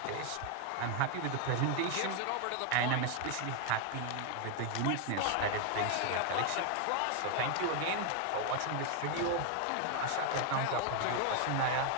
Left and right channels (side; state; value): both; different; correlation 0.00